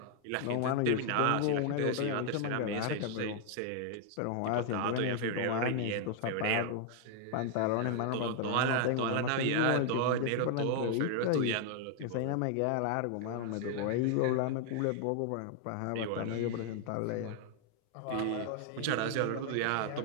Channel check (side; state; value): both; different; correlation 0.00